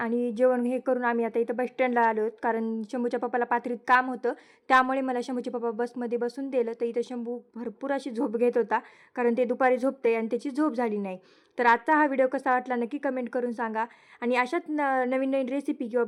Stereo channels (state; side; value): identical; both; correlation 1.00